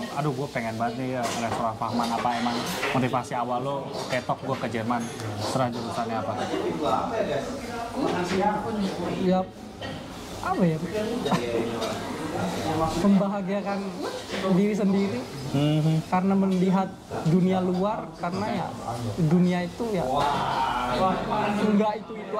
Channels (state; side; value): identical; both; correlation 1.00